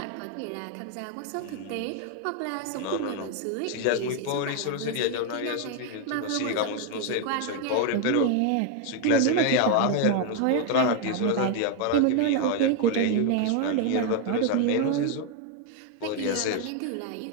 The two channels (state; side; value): different; both; correlation 0.01